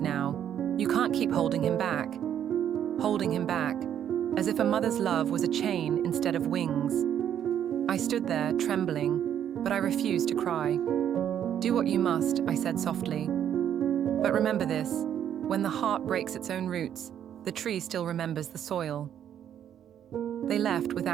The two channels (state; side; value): quieter; left; 9.8 dB